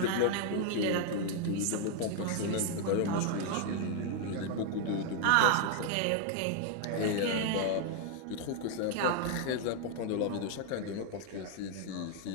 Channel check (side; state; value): both; different; correlation 0.00